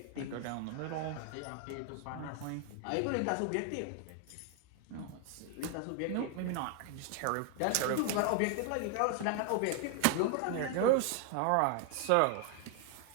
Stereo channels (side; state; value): both; different; correlation 0.00